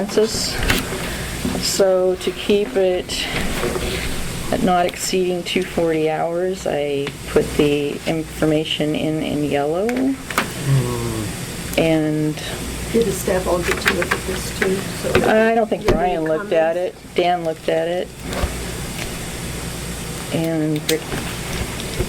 So to keep it at not exceeding 240 hours, I put the information in yellow. And Did the staff all get to look at this too? So I don't think you have any Brian looked at it. comments? Dan looked at it. And Rick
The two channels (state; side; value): identical; both; correlation 1.00